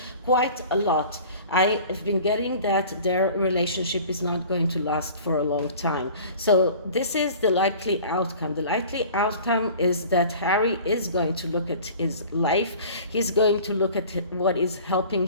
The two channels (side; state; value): both; inverted; correlation -0.43